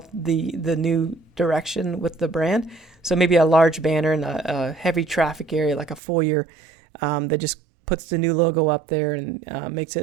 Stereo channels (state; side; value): drops out; left; at 6.0 s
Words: the new direction with the brand. So maybe a large banner in a heavy traffic area like a foyer that just puts the new logo up there and makes